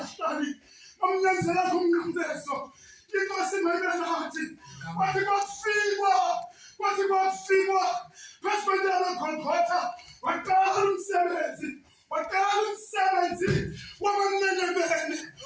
Bamnyenzela kumnqambezo. Inkosi mayibelathi. Wathi kwafikwa. Wathi kwafikwa. Phesibendela Golgotha. Waqala umsebenzi. Waqala umsebenzi wabamnenebene.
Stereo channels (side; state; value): both; identical; correlation 1.00